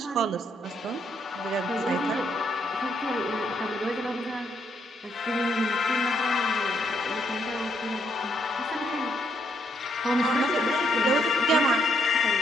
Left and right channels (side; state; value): both; normal; correlation 0.74